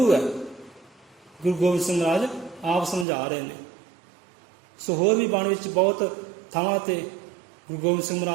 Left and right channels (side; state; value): left; drops out; at 3.1 s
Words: है। गुरु गोबिंद सिंह महाराज आप समझा रहे हैं। सो होर भी बाणी विच बहुत थावां ते गुरु गोबिंद सिंह